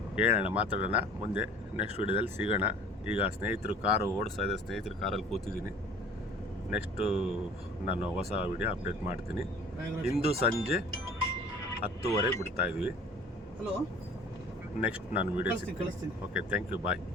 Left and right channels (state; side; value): normal; both; correlation 0.47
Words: ಹೇಳೋಣ, ಮಾತಾಡೋಣ ಮುಂದೆ. ನೆಕ್ಸ್ಟ್ ವೀಡಿಯೋದಲ್ಲಿ ಸಿಗೋಣ. ಈಗ ಸ್ನೇಹಿತರು ಕಾರು ಓಡಿಸ್ತಾ ಇದೆ, ಸ್ನೇಹಿತರು ಕಾರಲ್ಲಿ ಕೂತಿದ್ದೀನಿ. ನೆಕ್ಸ್ಟು ನಾನು ಹೊಸ ವಿಡಿಯೋ ಅಪ್ಡೇಟ್ ಮಾಡ್ತೀನಿ. ಇಂದು ಸಂಜೆ 10:30 ಬಿಡ್ತಾ ಇದ್ವಿ. ನೆಕ್ಸ್ಟ್ ನಾನು ವಿಡಿಯೋ ಸಿಗ್ತೀನಿ. Okay, thank you, bye.